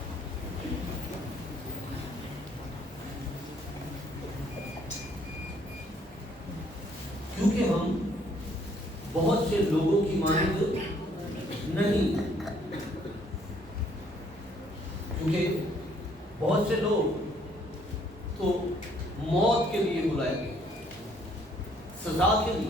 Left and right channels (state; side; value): normal; both; correlation 0.64